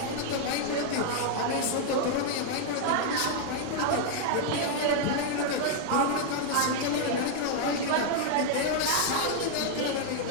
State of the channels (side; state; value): both; different; correlation 0.00